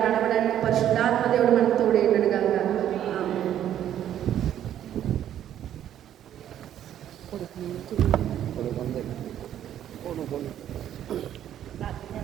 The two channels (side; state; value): left; quieter; 10.9 dB